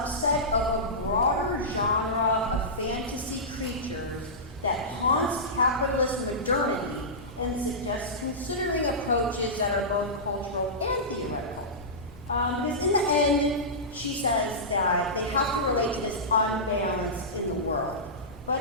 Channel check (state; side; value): normal; both; correlation -0.16